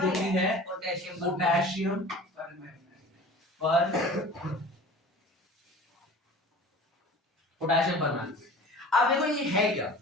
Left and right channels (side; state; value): both; normal; correlation 0.41